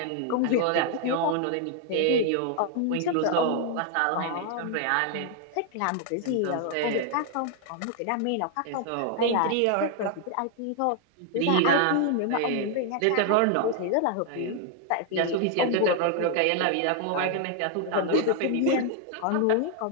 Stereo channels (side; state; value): both; different; correlation 0.00